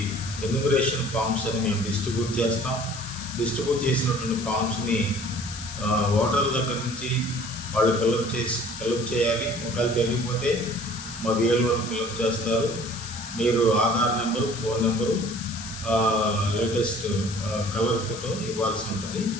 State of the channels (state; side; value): noise; left; hiss, 11 dB below the sound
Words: ఎన్యూమరేషన్ ఫామ్స్ అని మేము డిస్ట్రిబ్యూట్ చేస్తాం. డిస్ట్రిబ్యూట్ చేసినటువంటి ఫామ్స్ని ఓటర్ల దగ్గర నుంచి వాళ్ళు ఫిలప్ చేయాలి. ఒకవేళ తెలియకపోతే మా VLO ఫిలప్ చేస్తారు. మీరు Aadhaar number, phone number, latest colour photo ఇవ్వాల్సి ఉంటుంది.